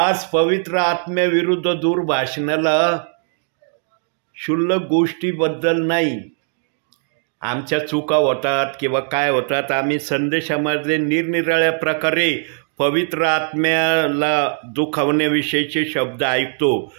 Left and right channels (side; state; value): left; silent; digital silence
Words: पवित्र आत्म्याविरुद्ध दुर्भाषणाला क्षुल्लक गोष्टीबद्दल नाही. आमच्या चुका होतात किंवा काय होतात, आम्ही संदेशामध्ये निरनिराळ्या प्रकारे पवित्र आत्म्याला दुखावण्याविषयीचे शब्द ऐकतो.